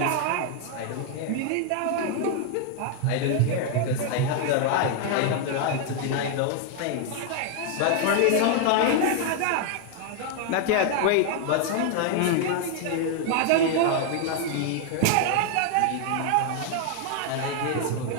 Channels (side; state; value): both; different; correlation 0.00